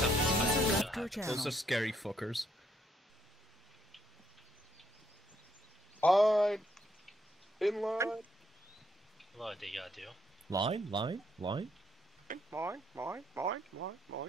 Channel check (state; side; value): normal; both; correlation 0.72